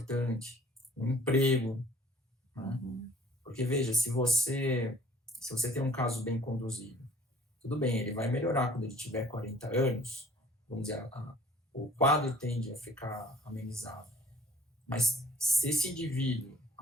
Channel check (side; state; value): both; normal; correlation 0.53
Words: um emprego, né? Porque, veja, se você tem um caso bem conduzido, tudo bem, ele vai melhorar quando ele tiver 40 anos, vamos dizer, o quadro tende a ficar amenizado. Mas se esse indivíduo,